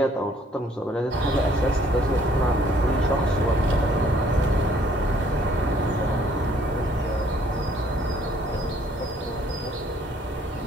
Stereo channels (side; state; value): both; normal; correlation 0.62